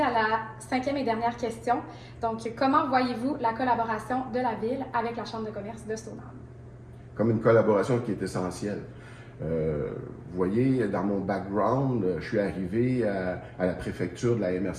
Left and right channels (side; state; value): both; identical; correlation 1.00